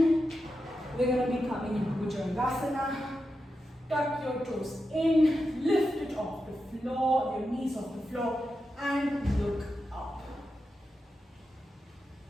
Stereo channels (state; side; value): normal; both; correlation 0.89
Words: We're going to be coming into Bhujangasana. Tuck your toes in, lift it off the floor, your knees off the floor, and look up.